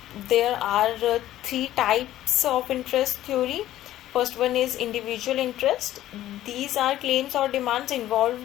There are three types of interest theory. First one is individual interest. These are claims or demands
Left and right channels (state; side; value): quieter; right; 13.7 dB